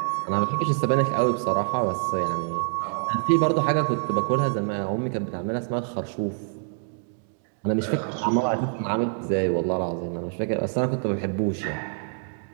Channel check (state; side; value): silent; left; 61 dB below the other